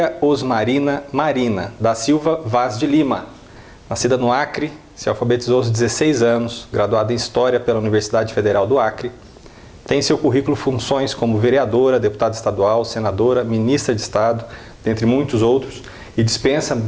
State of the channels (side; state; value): both; identical; correlation 1.00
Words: Osmarina Marina, da Silva Vaz de Lima. Nascida no Acre, se alfabetizou aos 16 anos, graduada em História pela Universidade Federal do Acre. Tem em seu currículo funções como vereadora, deputada estadual, senadora, ministra de Estado, dentre muitos outros, e dispensa